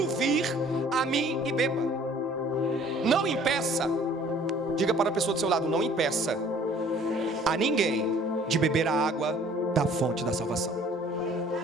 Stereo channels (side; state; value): both; normal; correlation 0.54